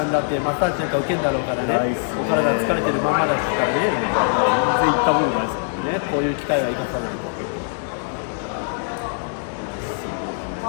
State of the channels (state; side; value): silent; right; digital silence